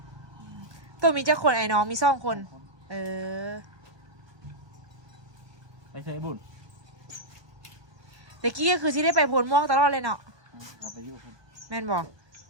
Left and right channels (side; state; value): left; late; 1.2 ms